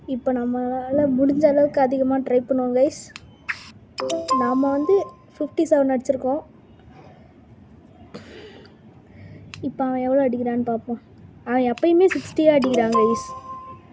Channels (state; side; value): identical; both; correlation 1.00